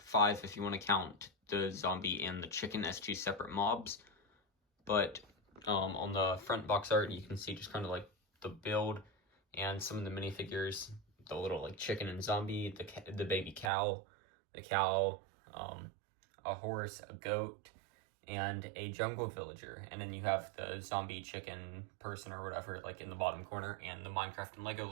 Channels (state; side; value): drops out; left; at 13.7 s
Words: if you want to count the zombie and the chicken as 2 separate mobs. But on the front box art, you can see just kind of like the build and some of the minifigures, the little like chicken and zombie, the baby cow, the cow, a horse, a goat, and a jungle villager. And then you have the zombie chicken person or whatever like in the bottom corner, and the Minecraft and Lego